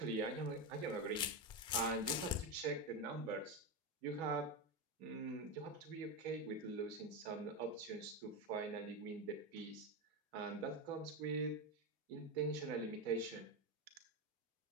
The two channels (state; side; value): normal; both; correlation 0.13